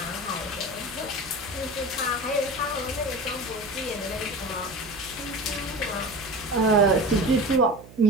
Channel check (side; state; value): right; noise; hum, 19 dB below the sound